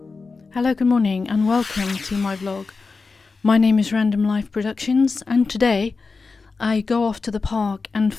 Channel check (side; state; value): right; quieter; 4.3 dB